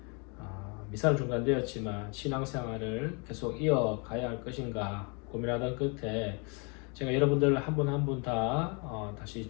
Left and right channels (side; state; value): right; quieter; 33.0 dB